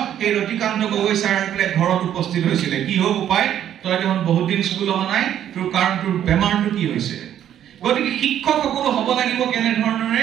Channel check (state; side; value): quieter; left; 10.5 dB